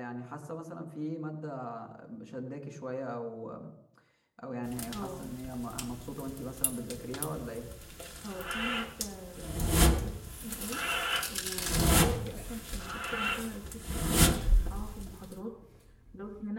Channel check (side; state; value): both; identical; correlation 1.00